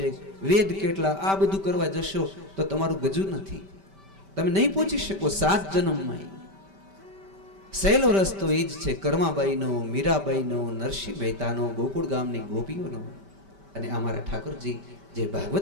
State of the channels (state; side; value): late; left; 5.1 ms